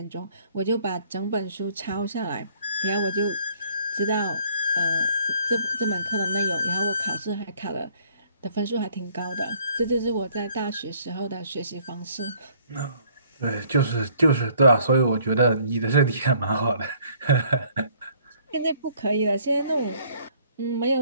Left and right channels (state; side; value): inverted; both; correlation -0.60